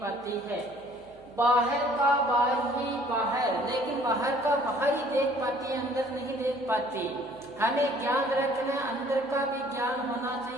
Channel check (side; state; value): right; noise; hum, 28 dB below the sound